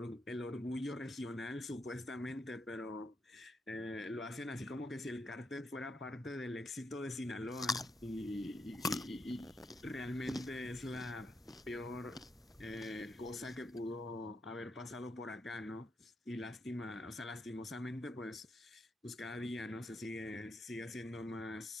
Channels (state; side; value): normal; both; correlation 0.80